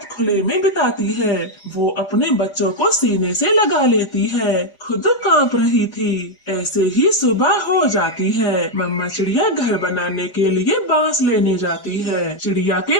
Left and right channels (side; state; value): right; late; 4.9 ms